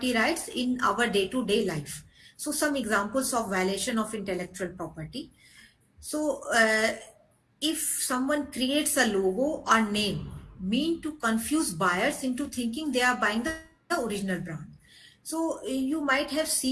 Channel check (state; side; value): identical; both; correlation 1.00